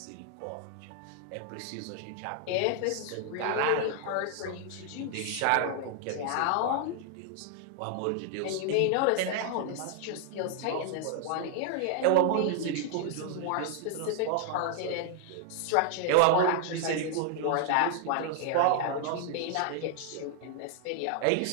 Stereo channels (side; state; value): both; different; correlation -0.01